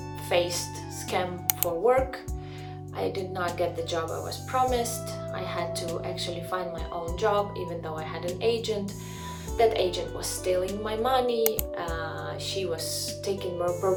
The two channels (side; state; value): both; identical; correlation 1.00